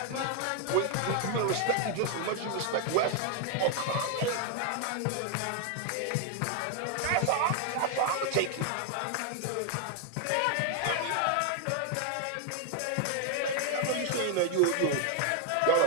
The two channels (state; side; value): different; both; correlation 0.00